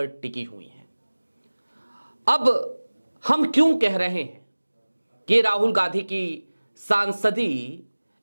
टिकी हुई है। अब हम क्यों कह रहे हैं कि राहुल गांधी की सांसदी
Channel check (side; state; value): both; inverted; correlation -1.00